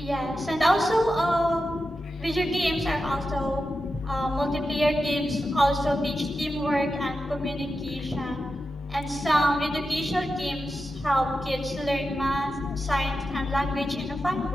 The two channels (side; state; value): both; normal; correlation 0.90